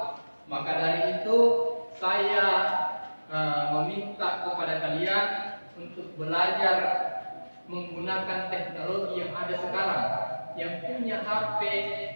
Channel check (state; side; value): inverted; both; correlation -1.00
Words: Maka dari itu saya meminta kepada kalian untuk belajar menggunakan teknologi yang ada sekarang. Yang punya HP